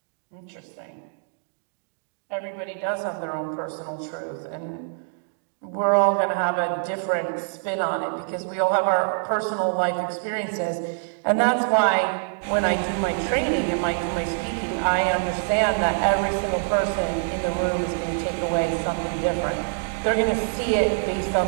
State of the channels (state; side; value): silent; left; digital silence